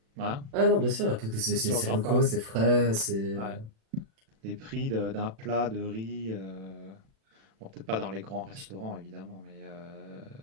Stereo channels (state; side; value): late; left; 36 ms